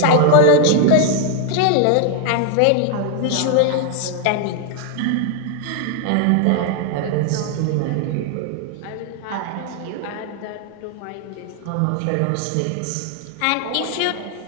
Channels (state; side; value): different; both; correlation 0.01